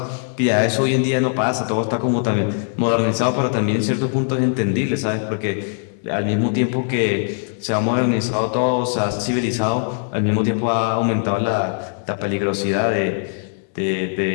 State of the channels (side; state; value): right; silent; digital silence